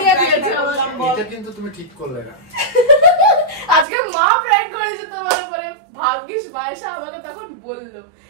দিয়েছে আমাকে। এটা কিন্তু তুমি ঠিক করলে না। আজকে মা প্র্যাঙ্ক করেছে তোমার উপরে। ভাগ্যিস মায়েশা আমাকে তখন বললো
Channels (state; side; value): drops out; left; at 3.9 s